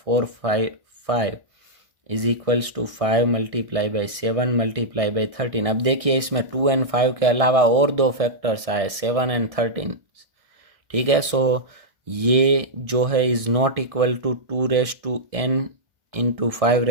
= 5 × 7 × 13। अब देखिए इसमें 2 और 5 के अलावा और 2 फैक्टर्स आए, 7 और 13। ठीक है, सो ये जो है is not equal to 2n ×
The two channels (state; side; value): late; left; 1.6 ms